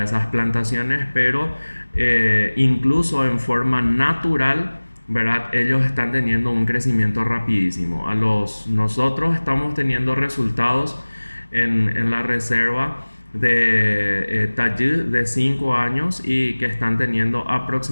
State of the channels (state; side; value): inverted; both; correlation -1.00